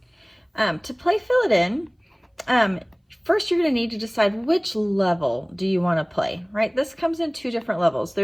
To play Fill It In, first, you're going to need to decide which level do you want to play, right? This comes in two different levels.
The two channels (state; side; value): identical; both; correlation 1.00